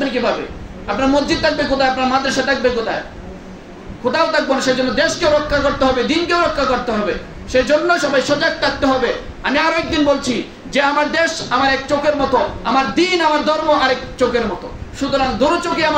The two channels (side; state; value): both; identical; correlation 1.00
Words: কিভাবে? আপনার মসজিদ থাকবে কোথায়? আপনার মাদ্রাসা থাকবে কোথায়? কোথাও থাকবো না। সেজন্য দেশকে রক্ষা করতে হবে, দিনকেও রক্ষা করতে হবে। সেজন্য সবাই সজাগ থাকতে হবে। আমি আরো একদিন বলছি যে আমার দেশ আমার এক চোখের মতো, আমার দিন আমার ধর্ম আরেক চোখের মতো। সুতরাং দুটো চোখে